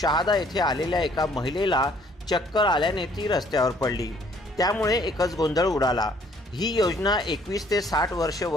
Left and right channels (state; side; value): normal; both; correlation 0.61